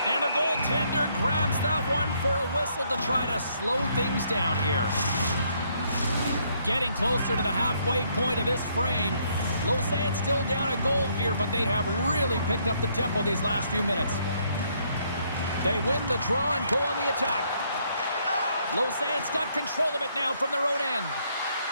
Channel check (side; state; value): both; inverted; correlation -0.70